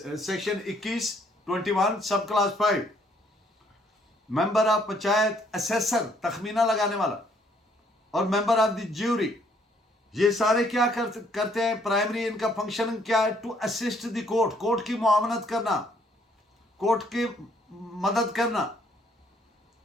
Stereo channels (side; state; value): both; normal; correlation 0.66